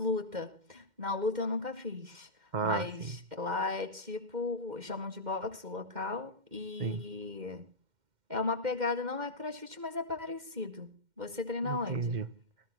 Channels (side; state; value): left; late; 2.1 ms